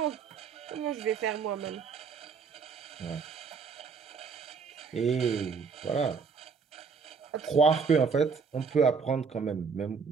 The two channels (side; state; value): left; quieter; 5.5 dB